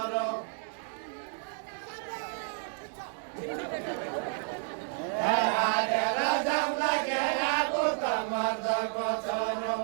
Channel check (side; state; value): left; silent; 57 dB below the other